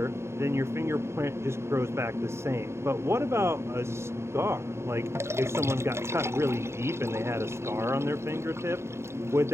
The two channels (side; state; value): left; late; 0.13 ms